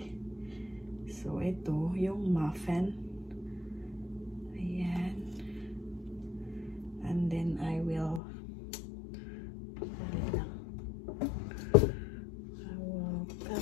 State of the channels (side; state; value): right; drops out; at 8.2 s